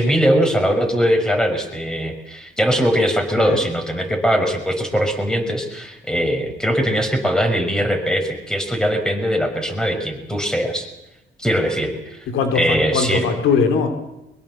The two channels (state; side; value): normal; both; correlation 0.73